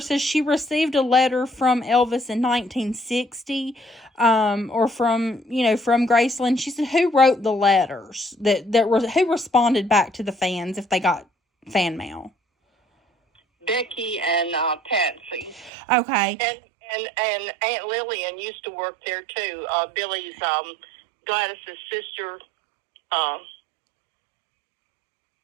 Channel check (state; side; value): drops out; left; at 15.7 s